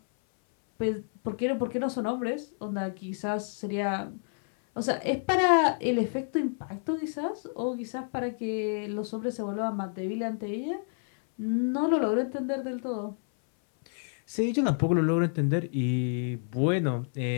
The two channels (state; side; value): silent; right; 58 dB below the other